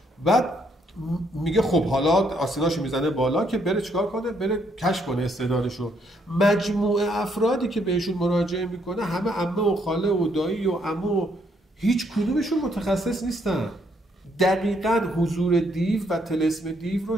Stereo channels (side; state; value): both; normal; correlation 0.72